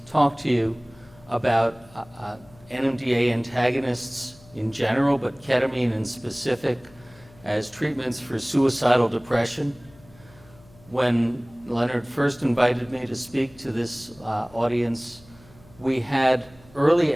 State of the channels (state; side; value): noise; left; hum, 25 dB below the sound